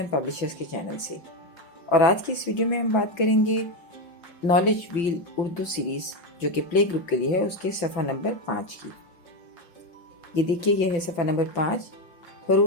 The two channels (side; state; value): right; late; 5.9 ms